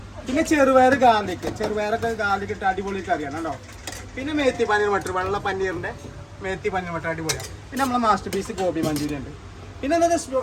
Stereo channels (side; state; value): both; identical; correlation 1.00